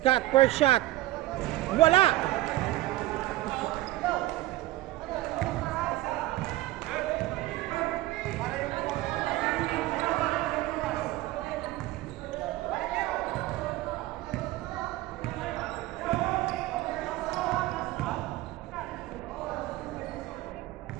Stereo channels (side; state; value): left; quieter; 17.2 dB